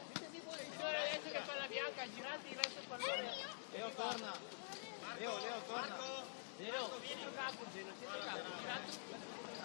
Adesso la palla bianca, girati verso il pallone. Leo torna. Marco, vieni. Qua laterale.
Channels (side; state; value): right; silent; digital silence